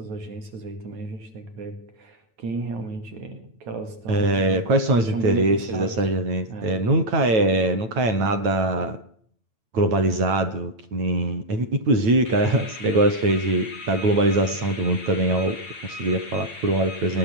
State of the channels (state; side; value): late; left; 9.1 ms